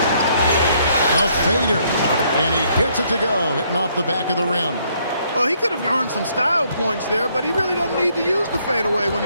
A fader. And he gets it to go, hitting off the back of the rim. Well, he could have earned some style points there, but he really doesn't need to use the fadeaway when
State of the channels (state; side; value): inverted; both; correlation -0.68